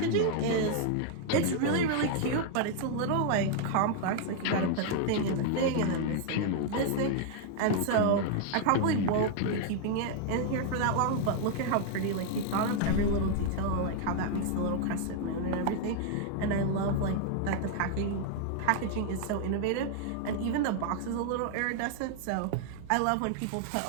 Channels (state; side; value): different; both; correlation 0.00